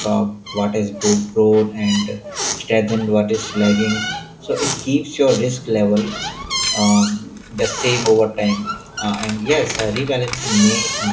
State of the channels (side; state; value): both; identical; correlation 1.00